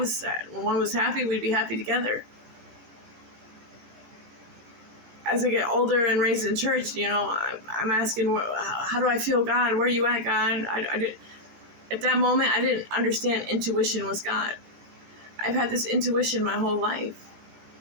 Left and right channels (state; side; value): late; left; 17 ms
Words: sad. When one was happy, we'd be happy together. As I get older and raised in church, you know, I'm asking, how do I feel God? Where are you at, God? At that moment, I didn't understand intuition was God. I've had this intuition my whole life.